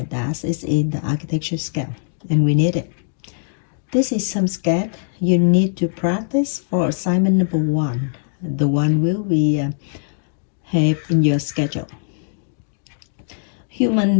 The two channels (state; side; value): silent; right; digital silence